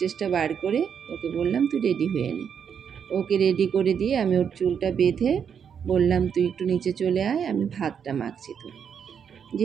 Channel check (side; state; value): left; quieter; 7.5 dB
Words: বার করে ওকে বললাম তুই রেডি হয়ে নে। ওকে রেডি করে দিয়ে আমি ওর চুলটা বেঁধে বললাম তুই একটু নিচে চলে আয়, আমি ভাতটা মাখছি। তো